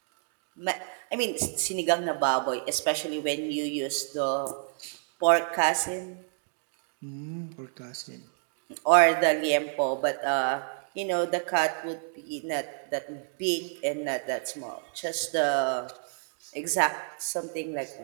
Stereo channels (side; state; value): left; silent; digital silence